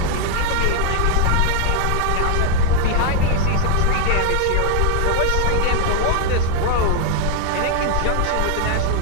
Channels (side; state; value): both; different; correlation 0.00